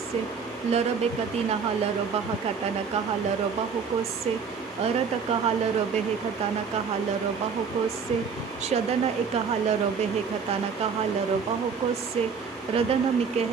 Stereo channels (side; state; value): left; quieter; 5.9 dB